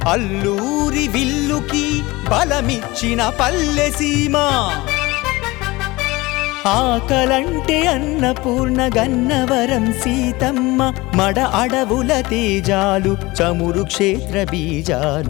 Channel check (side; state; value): right; quieter; 21.4 dB